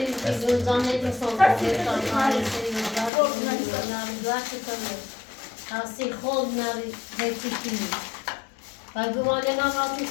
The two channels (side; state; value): right; drops out; at 3.1 s